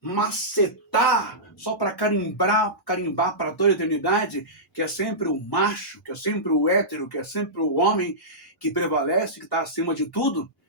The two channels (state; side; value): normal; both; correlation -0.16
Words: só para carimbar para toda a eternidade, que é sempre o macho, que é sempre o hétero, que é sempre o homem que prevalece, que está acima de tudo,